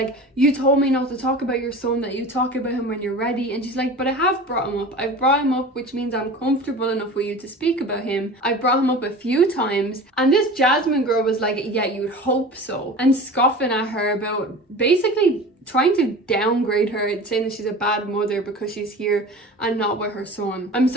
you told me not to talk about your son, that you talk about him when you're ready. And she's like, but I have brought him up. I've brought him up, which means I'm comfortable enough with you to speak about him. I've brought him up a few times. And this Jasmine girl was like, yeah, you'd hope so. And scoffing at her about basically trying to downgrade her and saying that she's a bad mother because she's here and not with her son. I'm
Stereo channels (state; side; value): normal; both; correlation 0.36